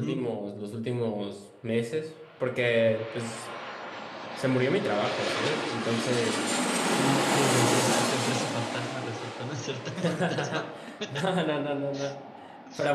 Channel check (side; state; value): both; identical; correlation 1.00